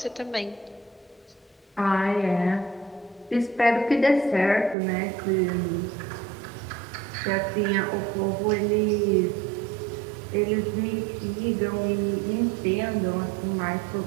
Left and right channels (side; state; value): left; drops out; at 4.8 s